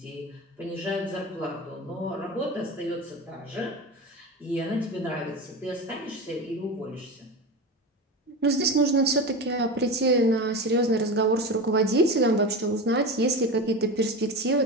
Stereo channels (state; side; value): normal; both; correlation 0.25